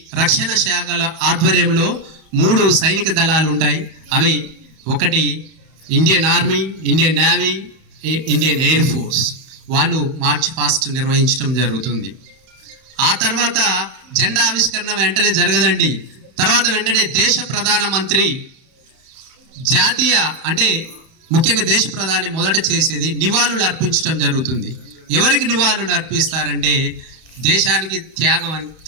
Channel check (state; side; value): late; left; 31 ms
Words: రక్షణ శాఖల ఆధ్వర్యంలో 3 సైనిక దళాలు ఉంటాయి. అవి ఒకటి Indian army, Indian navy, Indian air force. వాళ్ళు మార్చ్ పాస్ట్ నిర్వహించడం జరుగుతుంది. ఆ తర్వాత జెండా ఆవిష్కరణ వెంటనే జరగదండి. తర్వాత వెంటనే దేశ ప్రధానమంత్రి జాతీయ అంటే ముఖ్యంగా దేశ ప్రధాని మొదట చేసేది నివాళులు అర్పించడం జరుగుతుంది. ఎవరికి నివాళులు అర్పిస్తారంటే దేశానికి